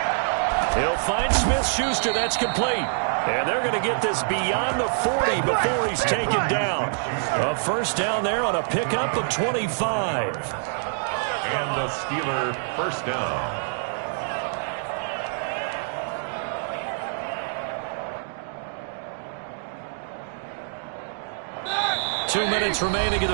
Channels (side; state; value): left; silent; digital silence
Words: He'll find Smith-Schuster. That's complete. And they're going to get this beyond the 40 before he's taken down. A first down there on a pickup of 25. And the Steeler first down. 2 minutes remaining in